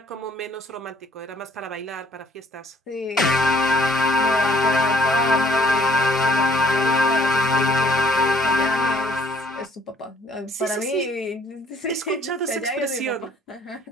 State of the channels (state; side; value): normal; both; correlation 0.60